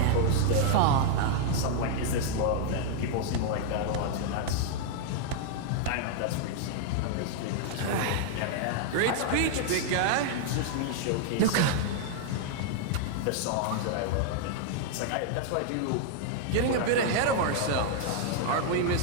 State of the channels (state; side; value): different; both; correlation 0.00